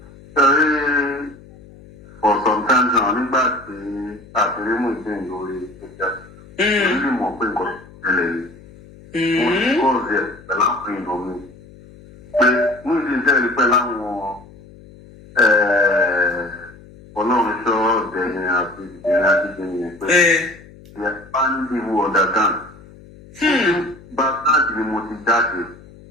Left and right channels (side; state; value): left; noise; hum, 21 dB below the sound